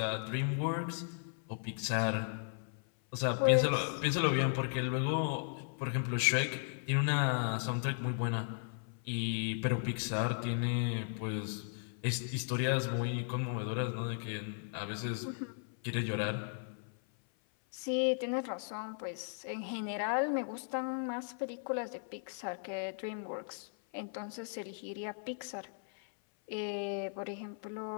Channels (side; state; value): right; silent; 54 dB below the other